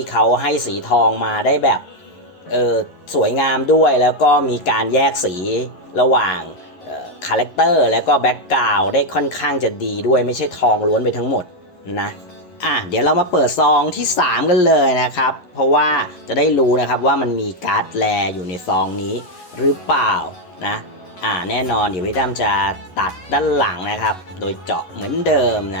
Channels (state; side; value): late; right; 11 ms